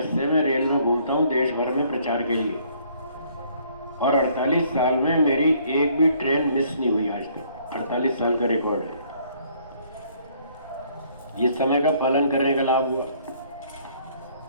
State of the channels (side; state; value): both; inverted; correlation -0.62